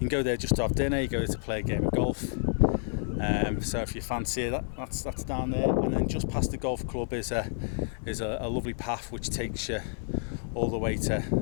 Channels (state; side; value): silent; right; digital silence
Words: go there just to have dinner. You go there to play a game of golf. So if you fancy it, that's down there. And then just past the golf club is a lovely path which takes you all the way to